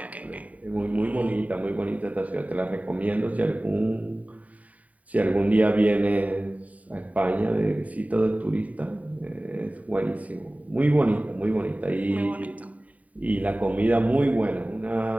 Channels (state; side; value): late; left; 0.070 ms